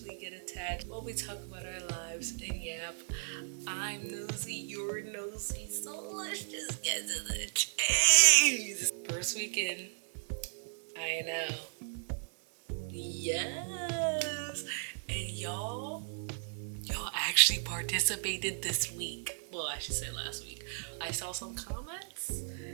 get attached while we talk about our lives and yap. I'm nosy, you're nosy, so let's just get to the chase. First weekend, I know. Yes, and y'all actually participated this week. Well, I should say last week. I saw some comments.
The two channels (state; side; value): silent; left; 54 dB below the other